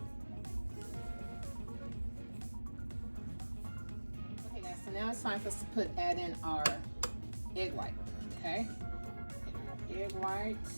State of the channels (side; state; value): both; inverted; correlation -1.00